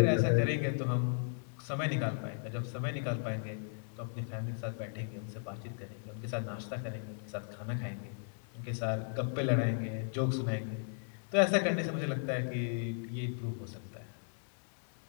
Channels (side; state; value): right; silent; digital silence